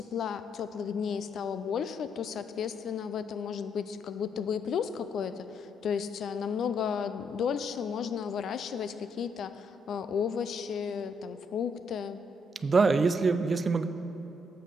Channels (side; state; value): both; normal; correlation 0.74